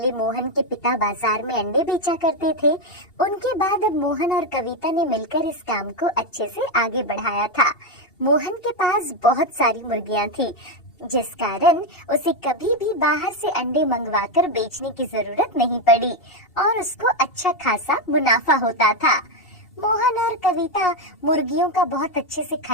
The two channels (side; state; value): right; late; 2.7 ms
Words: मोहन के पिता बाजार में अंडे बेचा करते थे। उनके बाद अब मोहन और कविता ने मिलकर इस काम को अच्छे से आगे बढ़ाया था। मोहन के पास बहुत सारी मुर्गियां थी, जिस कारण उसे कभी भी बाहर से अंडे मंगवाकर बेचने की जरूरत नहीं पड़ी और उसको अच्छा खासा मुनाफा होता था। मोहन और कविता मुर्गियों का बहुत अच्छे से